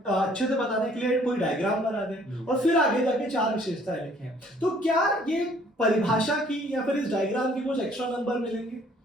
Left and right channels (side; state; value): both; normal; correlation 0.59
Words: से बताने के लिए कोई डायग्राम बना दें और फिर आगे जाके 4 विशेषताएं लिखें। तो क्या ये परिभाषा की या फिर इस डायग्राम की कुछ एक्स्ट्रा नंबर मिलेंगे?